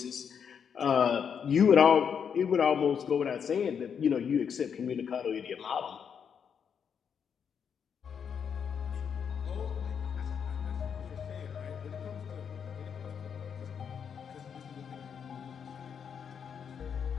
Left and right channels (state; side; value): quieter; right; 7.3 dB